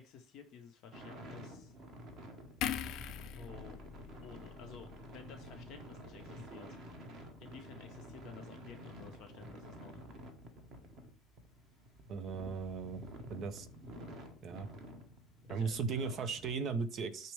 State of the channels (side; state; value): both; normal; correlation 0.39